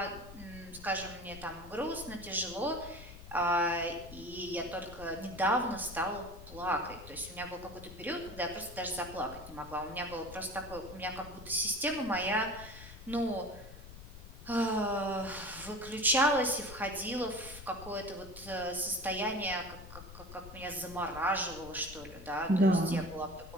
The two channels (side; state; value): left; noise; rumble, 14 dB below the sound